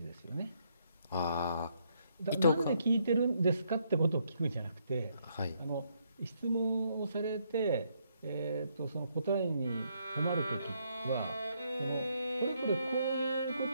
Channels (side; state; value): both; inverted; correlation -0.73